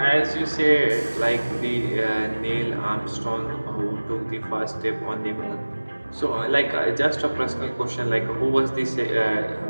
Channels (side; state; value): both; inverted; correlation -1.00